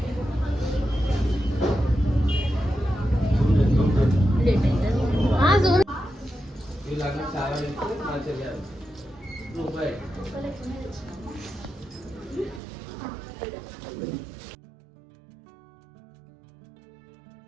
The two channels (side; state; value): left; drops out; at 12.6 s